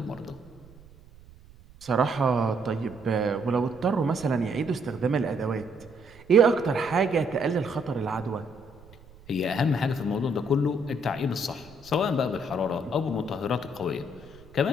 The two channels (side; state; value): right; noise; rumble, 23 dB below the sound